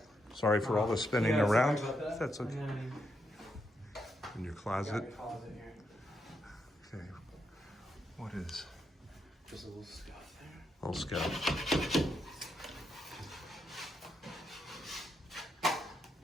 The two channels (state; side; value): normal; both; correlation 0.81